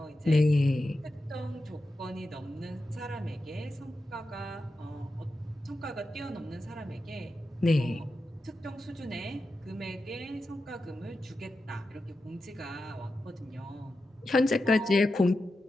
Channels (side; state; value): both; normal; correlation 0.90